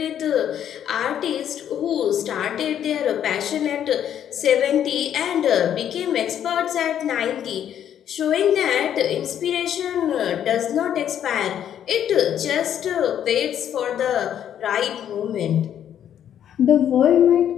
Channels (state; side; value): quieter; right; 9.9 dB